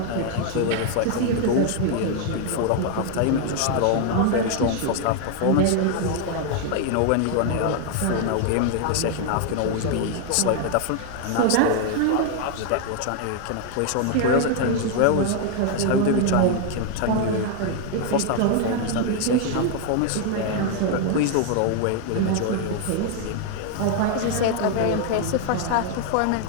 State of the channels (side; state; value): both; different; correlation 0.00